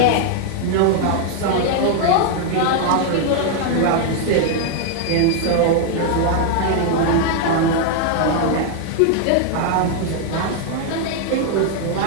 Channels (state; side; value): different; both; correlation 0.00